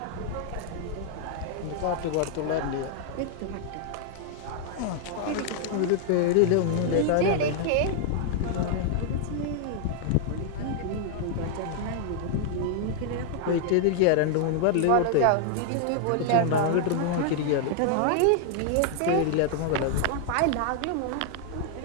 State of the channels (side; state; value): both; different; correlation -0.01